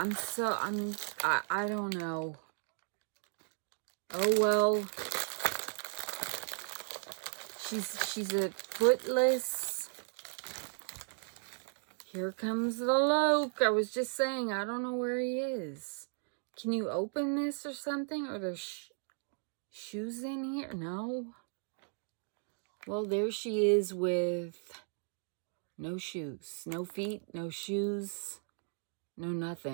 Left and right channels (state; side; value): silent; left; 54 dB below the other